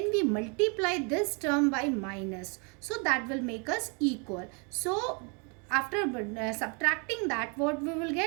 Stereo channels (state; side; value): quieter; left; 35.7 dB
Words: we multiply this term by minus, so that will make us equal. So after subtracting that, what we will